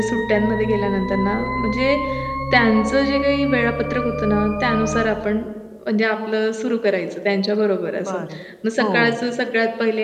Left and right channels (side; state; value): both; identical; correlation 1.00